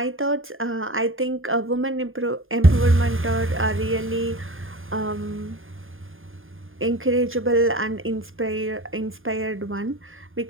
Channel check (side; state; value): left; late; 0.59 ms